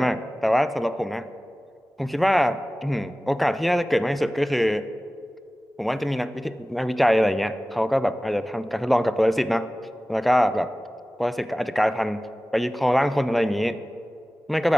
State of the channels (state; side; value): normal; both; correlation 0.97